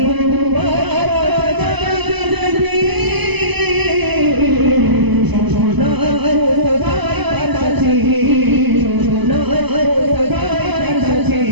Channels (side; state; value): left; late; 0.99 ms